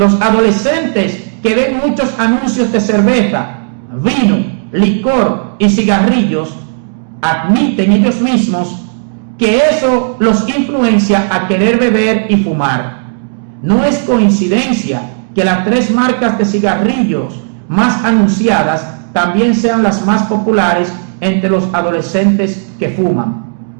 adolescentes que ven muchos anuncios de cerveza, vino, licor y cigarrillos, admiten ellos mismos que eso los influencia a querer beber y fumar. No es coincidencia que las 3 marcas de cigarrillos más anunciadas también sean las más populares entre los adolescentes que fuman.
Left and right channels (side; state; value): left; silent; digital silence